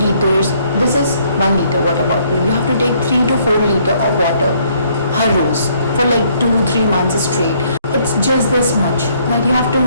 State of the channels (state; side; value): inverted; both; correlation -0.66